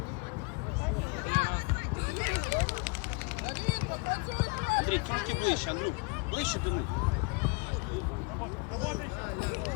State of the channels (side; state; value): right; quieter; 29.7 dB